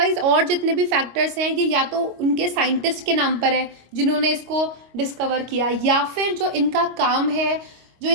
और जितने भी फैक्टर्स हैं ये या तो उनके साइंटिस्ट के नाम पर है जिन्होंने इसको डिस्कवर किया, या फिर जो इनका काम है, जो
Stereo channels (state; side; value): late; left; 25 ms